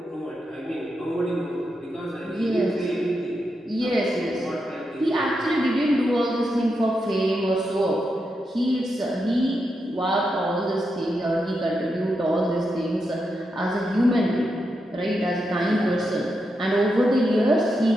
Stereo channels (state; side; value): normal; both; correlation 0.85